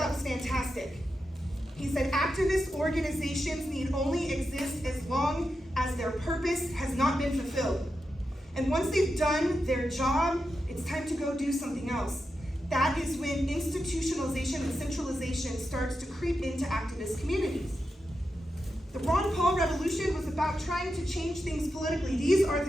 was fantastic. He said, activist organizations need only exist as long as their purpose has not been fulfilled. And once they've done their job, it's time to go do something else. That is when institutionalization and centralization starts to creep into activist communities. The Ron Paul Revolution was about trying to change things politically. These are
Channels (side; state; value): both; normal; correlation 0.88